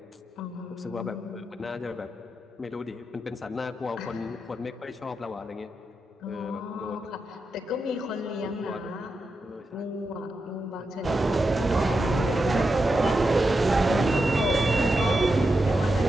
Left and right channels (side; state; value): both; normal; correlation 0.87